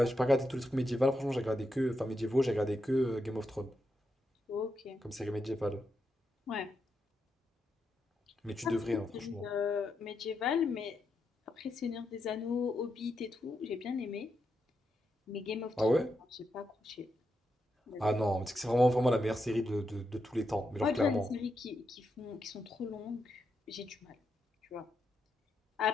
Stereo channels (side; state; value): both; normal; correlation 0.84